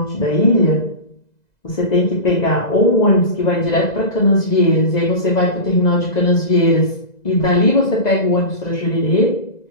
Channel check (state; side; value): late; right; 2.0 ms